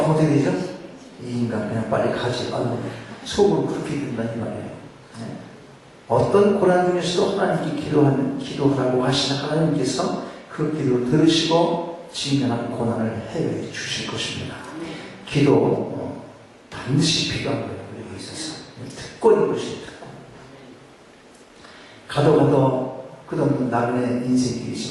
어떻게 되죠? 이 인간 그냥 빨리 가지. 속으로 그렇게 된다는 이 말이에요. 어떤 고난 중에서도 하나님께 기도하라고 하시는 하나님께서 그 기도를 들으시고 직면한 고난을 해결해 주실 것입니다. 기도 반드시 필요한 거예요. 우리에게 있어서. 특권인 것이 특권. 가도 끝없는 나그네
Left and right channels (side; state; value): both; identical; correlation 1.00